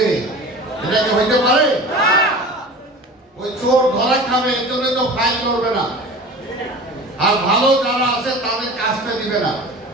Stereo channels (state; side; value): normal; both; correlation 0.37